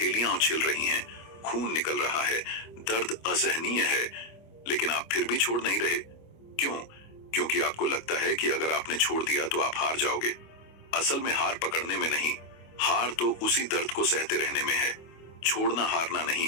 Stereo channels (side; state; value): right; late; 25 ms